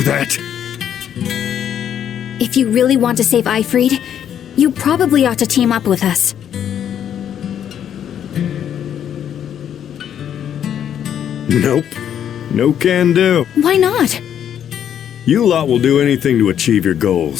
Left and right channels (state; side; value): quieter; right; 9.5 dB